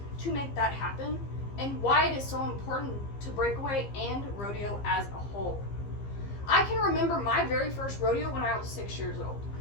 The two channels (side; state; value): right; late; 15 ms